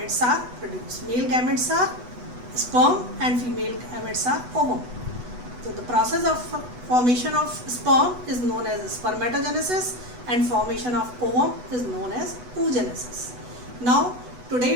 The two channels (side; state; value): left; late; 8.1 ms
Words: are produced. Male gametes are sperm and female gametes are ovum. So the process of formation of sperm is known as spermatogenesis and formation of ovum is known as oogenesis. Now